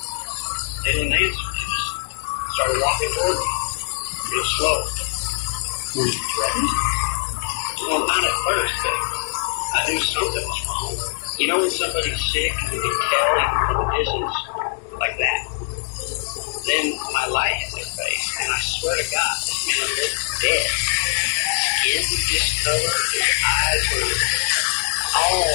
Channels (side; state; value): right; silent; 60 dB below the other